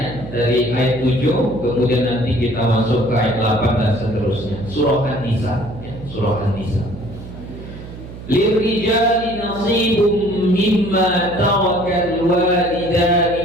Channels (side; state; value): right; noise; hum, 13 dB below the sound